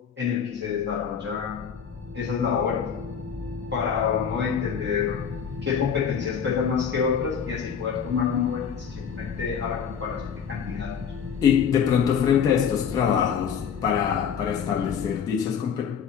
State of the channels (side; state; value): right; quieter; 7.3 dB